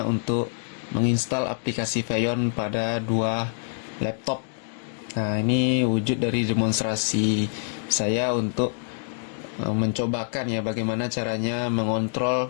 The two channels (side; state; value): right; silent; digital silence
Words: untuk menginstal aplikasi Feyon pada dua laptop. Nah, ini wujud dari demonstrasi saya untuk mencobakan ya bagaimana caranya